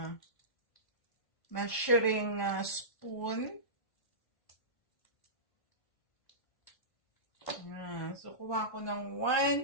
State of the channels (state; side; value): late; right; 1.5 ms